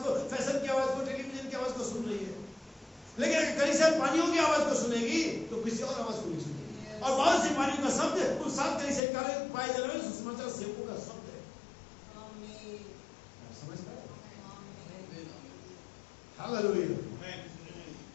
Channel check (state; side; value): drops out; right; at 9.0 s